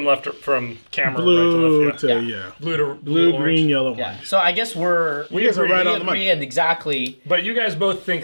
from camera Blue right to left. yeah. Blue, Green, yellow, yeah. orange. So I guess We guys are agree. right we on the money. agree and exactly But you guys both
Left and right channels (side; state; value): both; inverted; correlation -1.00